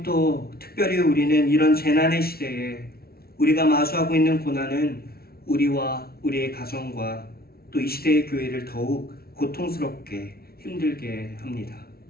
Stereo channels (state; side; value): late; right; 0.44 ms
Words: 또 특별히 우리는 이런 재난의 시대에 우리가 마주하고 있는 고난은 우리와 우리의 가정과 또 이 시대의 교회를 더욱 고통스럽게 힘들게 합니다.